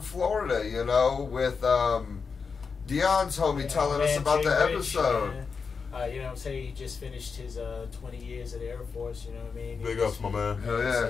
Florida, you know, with Dion's homie telling us Man, about Jay the Rich, episode. man. You know what I'm saying? He just finished his 20 years at the Air Force, you know what I mean? Big ups, my man. Hell So, yeah!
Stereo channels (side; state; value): right; quieter; 5.3 dB